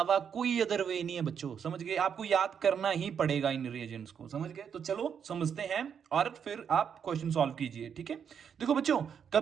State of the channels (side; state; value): left; quieter; 7.6 dB